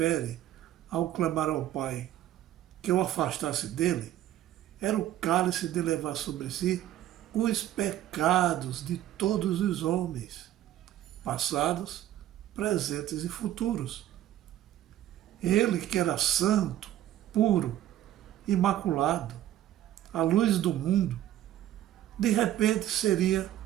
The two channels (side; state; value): left; quieter; 12.8 dB